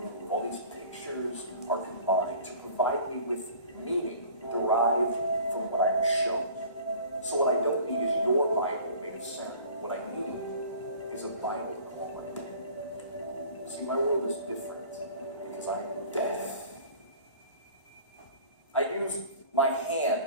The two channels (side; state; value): both; inverted; correlation -0.46